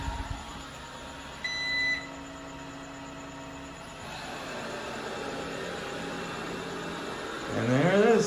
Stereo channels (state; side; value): identical; both; correlation 1.00